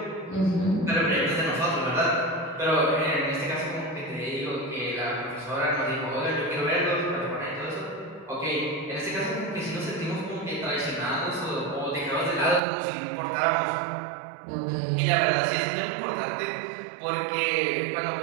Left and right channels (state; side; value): drops out; left; at 12.6 s